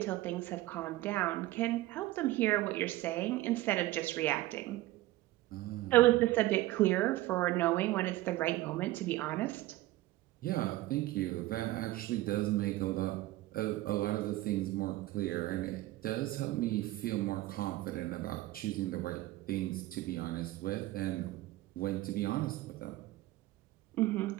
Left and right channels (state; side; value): quieter; left; 17.0 dB